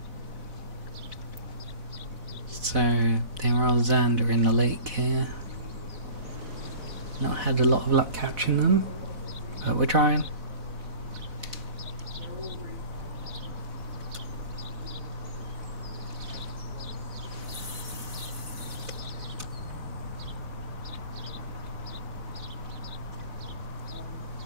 So there are Xander in the lake here. Not had a lot of luck catching them, but we're trying.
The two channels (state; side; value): late; left; 4.0 ms